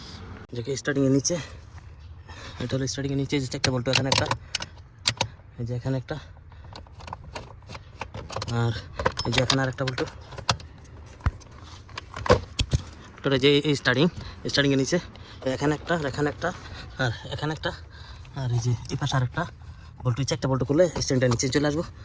যে স্টারিংয়ের নিচে, এটা হলো স্টারিংয়ের নিচে যে 4টা বোল্ট, এখানে একটা, এই যে এখানে একটা, আর এই যে এখানে আরেকটা বোল্ট। ওটা যে এই স্টারিংয়ের নিচে এখানে একটা, এখানে একটা, আর এখানে একটা, আর এই যে এই পাশে আরেকটা বোল্ট। 4টা বোল্ট খুলে স্ট্যান্ডটা নিচে চলে আসবো।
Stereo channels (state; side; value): identical; both; correlation 1.00